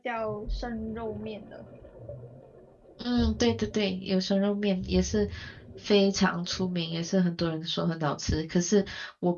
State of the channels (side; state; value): both; identical; correlation 1.00